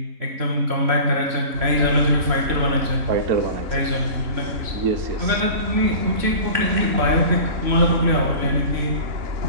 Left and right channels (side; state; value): left; late; 3.6 ms